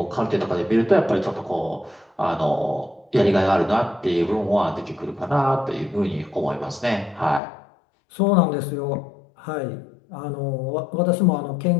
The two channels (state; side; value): drops out; right; at 7.4 s